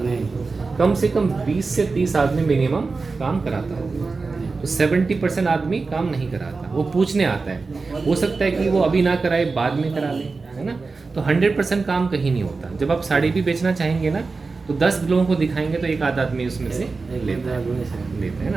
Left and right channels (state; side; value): quieter; left; 4.1 dB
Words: कम से कम 20 से 30 आदमी मिनिमम काम कराता होगा। तो 70% आदमी काम नहीं कराता, वो पूछने आता है। हो सकता है कि वो अभी ना कराए, बाद में करा ले, है ना। तो 100% काम कहीं नहीं होता। जब आप साड़ी भी बेचना चाहेंगे ना, तो 10 लोगों को दिखाएंगे तो एक आध आदमी उसमें से लेता है